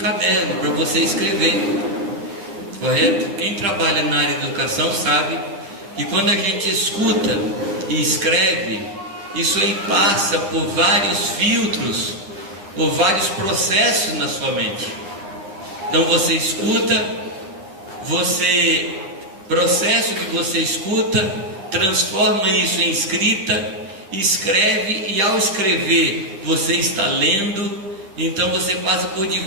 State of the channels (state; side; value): late; left; 10 ms